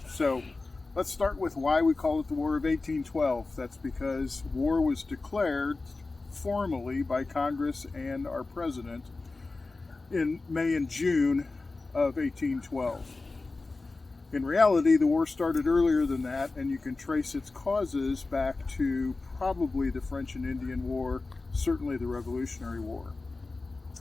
So let's start with why we call it the War of 1812. That's because war was declared formally by Congress and our president in May and June of 1812. In reality, the war started earlier than that, and you can trace its causes back to probably the French and Indian War, certainly the Revolutionary War.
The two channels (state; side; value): quieter; right; 3.5 dB